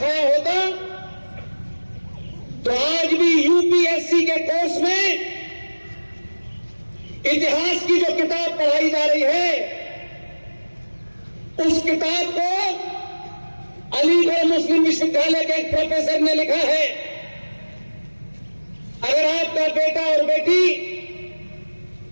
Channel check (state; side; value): inverted; both; correlation -1.00